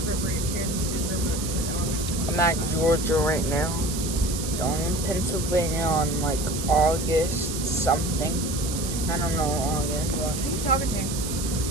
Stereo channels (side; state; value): right; noise; hiss, 7 dB below the sound